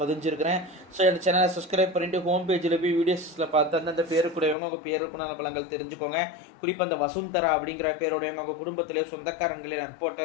பதிஞ்சிருக்கிறேன். ஸோ இந்த சேனலை சப்ஸ்கிரைப் பண்ணிட்டு ஹோம் பேஜில் போய் வீடியோஸில் பார்த்து அந்தந்த பேருக்குடையவங்க உங்கள் பேருக்குண்டான பலன்கள் தெரிஞ்சுக்கோங்க. குறிப்பாக அந்த வசுந்தரா அப்படிங்கிற பேருடையவங்க உங்கள் குடும்பத்திலே சொந்தக்காரங்களே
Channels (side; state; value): right; drops out; at 4.5 s